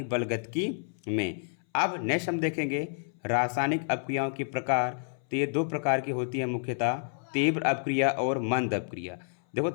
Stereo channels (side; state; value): right; silent; 58 dB below the other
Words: बलगतिकी में। अब नेक्स्ट हम देखेंगे रासायनिक अपक्रियाओं के प्रकार। तो ये दो प्रकार की होती है मुख्यतः, तीव्र अपक्रिया और मंद अपक्रिया। देखो